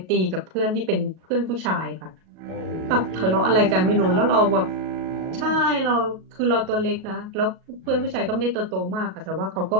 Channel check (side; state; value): left; late; 37 ms